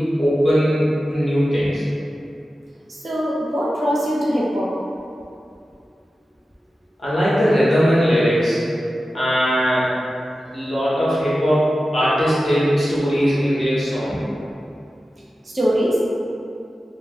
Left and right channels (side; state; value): both; normal; correlation 0.93